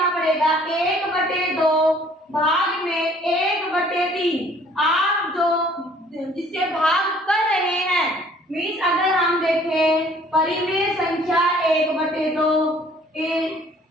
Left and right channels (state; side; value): normal; both; correlation 0.56